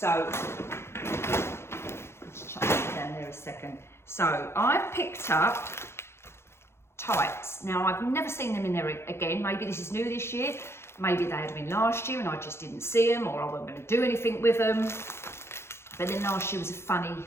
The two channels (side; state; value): right; late; 0.12 ms